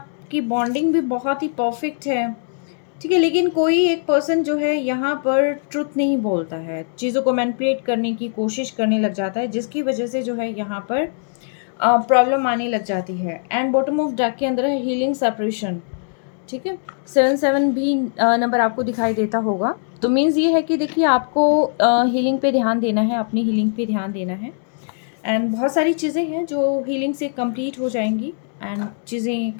बॉन्डिंग भी बहुत ही परफ़ेक्ट है, ठीक है? लेकिन कोई एक पर्सन जो है यहाँ पर ट्रुथ नहीं बोलता है, चीज़ों को मैनिपुलेट करने की कोशिश करने लग जाता है, जिसकी वजह से जो है यहाँ पर प्रॉब्लम आने लग जाती है। एंड बॉटम ऑफ डेक के अंदर है हीलिंग सेपरेशन, ठीक है? 7-7 भी नंबर आपको दिखाई देता होगा। तो मीन्स ये है कि देखिए आपको हीलिंग पे ध्यान देना है, अपनी हीलिंग पे ध्यान देना है एंड बहुत सारी चीज़ें हैं जो हीलिंग से कंप्लीट हो जाएँगी एंड चीज़ें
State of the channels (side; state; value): right; silent; digital silence